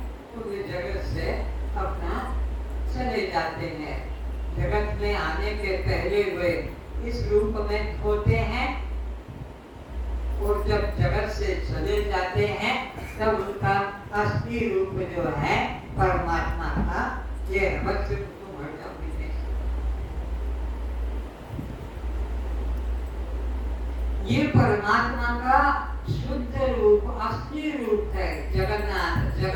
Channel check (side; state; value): both; identical; correlation 1.00